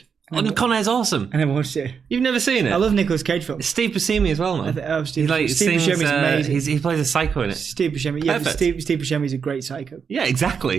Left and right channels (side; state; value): left; quieter; 6.4 dB